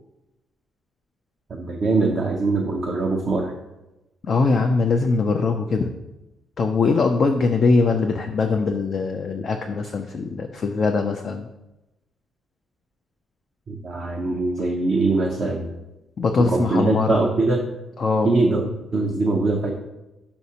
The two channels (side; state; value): both; normal; correlation 0.78